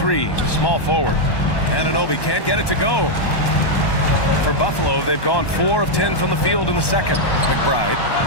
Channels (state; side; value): late; right; 1.1 ms